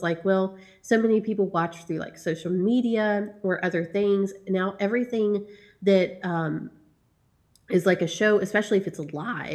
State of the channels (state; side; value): identical; both; correlation 1.00